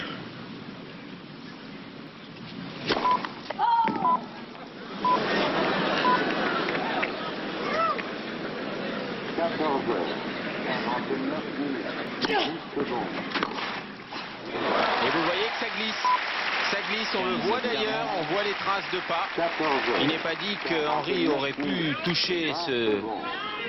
14h, 49 minutes, 10 secondes. Et vous voyez que ça glisse. Ça glisse, on le voit d'ailleurs, on voit les traces de pas. 14h. Il n'est pas dit que Henry aurait pu toucher ce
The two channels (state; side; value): identical; both; correlation 1.00